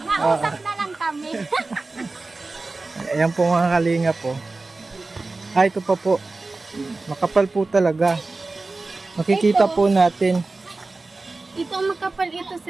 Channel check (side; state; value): left; quieter; 3.5 dB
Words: Mausap na lang kami. Ayan po mga kalinga po. Ito pa po. Makapal po talaga. Makikita po natin. Ito ang makapal ito,